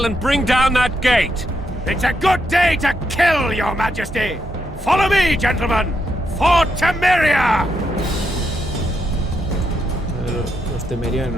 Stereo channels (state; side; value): normal; both; correlation 0.80